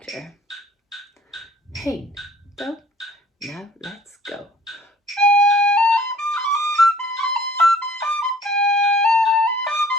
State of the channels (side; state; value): both; normal; correlation 0.52